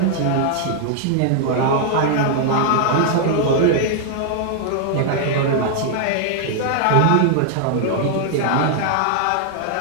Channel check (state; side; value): different; both; correlation -0.01